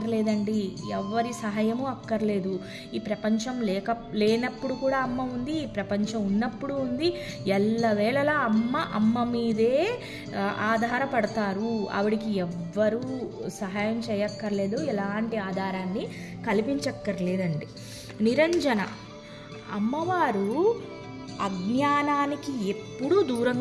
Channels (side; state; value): both; identical; correlation 1.00